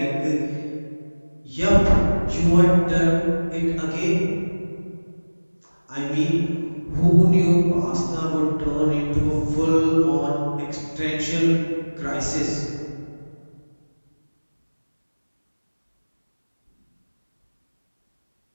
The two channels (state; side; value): inverted; both; correlation -1.00